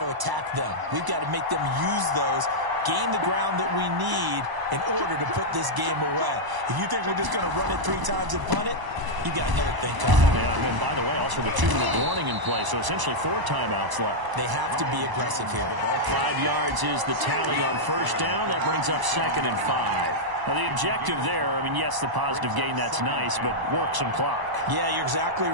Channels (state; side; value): late; left; 1.0 ms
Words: to attack them. We've got to make them use those, gain the ground that we need in order to put this game away. If you think we're just going to run it 3 times and punt it, you got another thing coming. Yeah, and by the way, also the 2-minute warning in play, so essentially 4 timeouts left. They have to be aggressive here. 5 yards is the tally on first down. That brings up 2nd and 5. Now, the objective there, I mean, yes, the positive gain, that's nice, but work some clock. Yeah, you're exactly